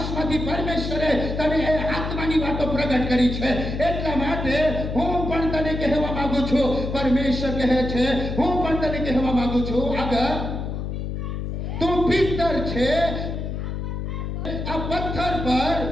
પરમેશ્વરે તને એ આત્માની વાતો પ્રગટ કરી છે. એટલા માટે હું પણ તને કહેવા માંગુ છું, પરમેશ્વર કહે છે, હું પણ તને કહેવા માંગુ છું, આગળ તું પિત્તર છે, આ પથ્થર પર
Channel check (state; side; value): noise; left; hum, 4 dB below the sound